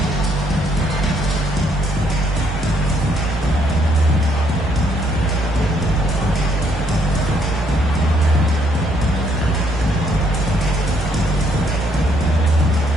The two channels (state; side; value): normal; both; correlation 0.69